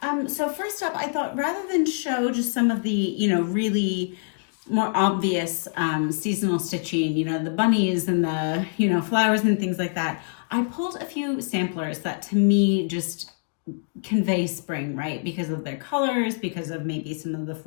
So first up, I thought rather than show just some of the, really more obvious seasonal stitching, the bunnies and the, flowers and things like that, I pulled a few samplers that to me just convey spring, right? Because of their colors, because of maybe some of the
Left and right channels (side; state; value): right; silent; digital silence